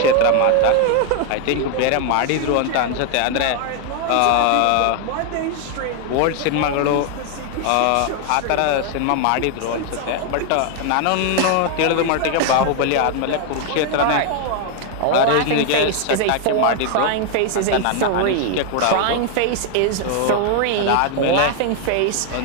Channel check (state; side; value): different; both; correlation 0.00